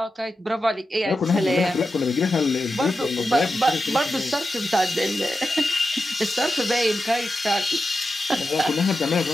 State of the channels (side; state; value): both; normal; correlation 0.90